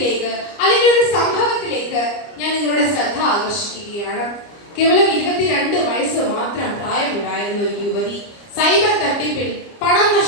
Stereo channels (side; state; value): right; late; 29 ms